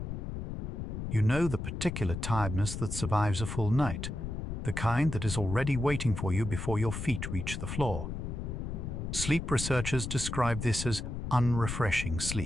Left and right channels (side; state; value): left; noise; rumble, 5 dB below the sound